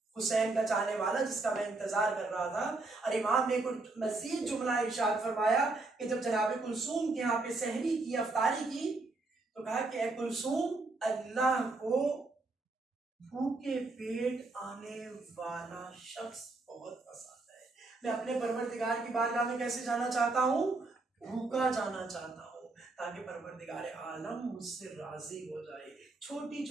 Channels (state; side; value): quieter; left; 3.3 dB